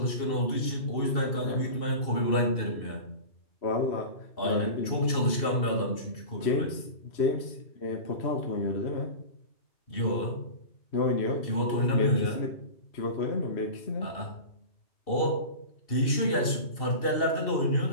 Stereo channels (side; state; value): right; late; 2.7 ms